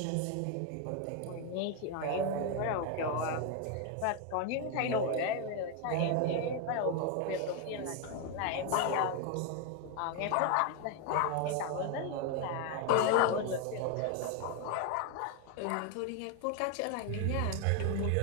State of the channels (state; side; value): different; both; correlation 0.01